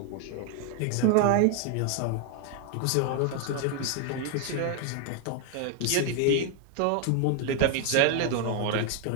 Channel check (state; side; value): different; both; correlation 0.00